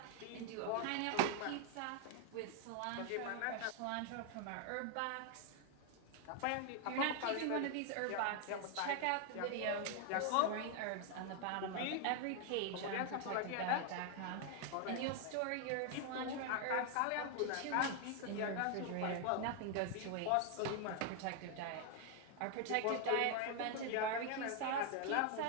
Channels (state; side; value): different; both; correlation 0.00